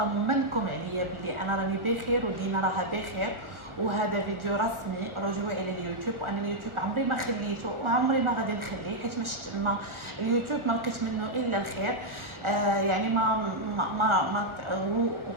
عليا بلي انا راني بخير ودينا راها بخير، وهذا فيديو رسمي رجوعي لليوتيوب. وانا اليوتيوب عمري ما خليته وعمري ما غادي نخليه، حيت ما اليوتيوب ما لقيت منه الا الخير. يعني ما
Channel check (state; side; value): late; left; 1.4 ms